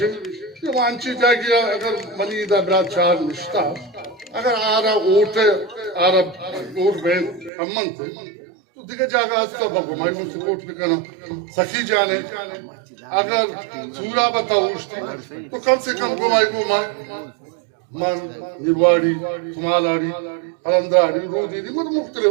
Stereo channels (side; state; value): left; drops out; at 7.5 s